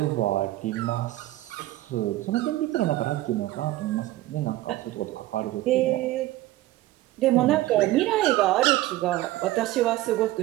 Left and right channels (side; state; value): left; quieter; 16.3 dB